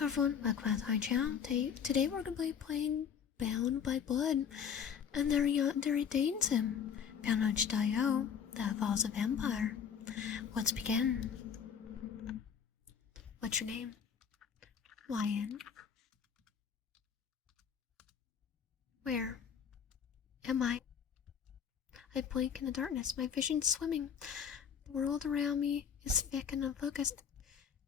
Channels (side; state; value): right; quieter; 7.4 dB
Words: everyone, welcome back to my channel. Today we're going to be playing Bound by Blood, and there Yandere dates him. Bound on itchio, that involves a vampire. Let's begin. What's your name? Lion. Where am I? I blink in the darkness, my vision's swimming. The world around me is thick and unfocused.